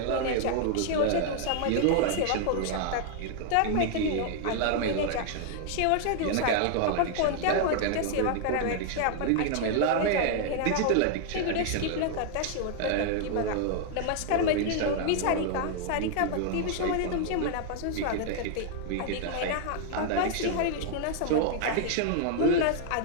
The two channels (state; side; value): different; both; correlation 0.00